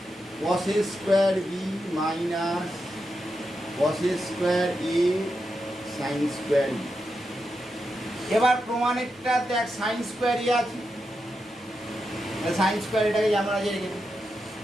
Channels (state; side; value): normal; both; correlation 0.87